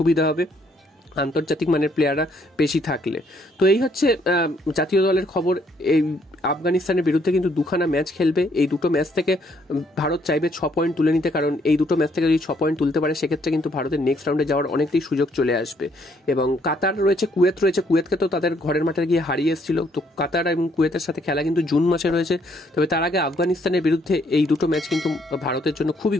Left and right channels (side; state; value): both; normal; correlation 0.68